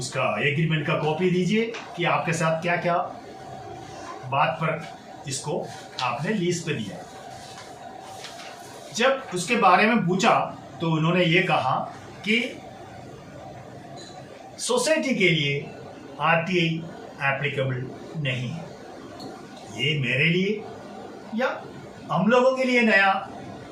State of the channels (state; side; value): identical; both; correlation 1.00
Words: एग्रीमेंट का कॉपी दीजिए कि आपके साथ क्या क्या बात पर इसको आपने लीज पे दिया। जब उसके बारे में पूछा तो उन्होंने ये कहा कि सोसाइटी के लिए आरटीआई एप्लीकेबल नहीं है। ये मेरे लिए या हम लोगों के लिए नया